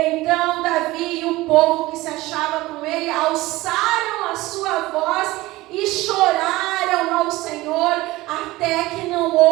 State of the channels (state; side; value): quieter; left; 19.2 dB